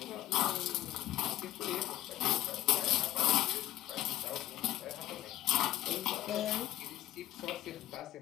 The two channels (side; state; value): right; quieter; 14.1 dB